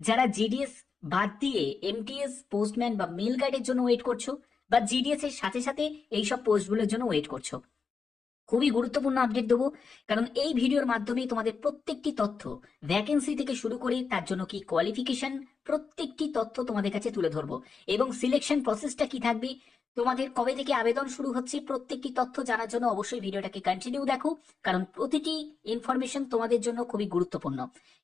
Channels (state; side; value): quieter; right; 5.3 dB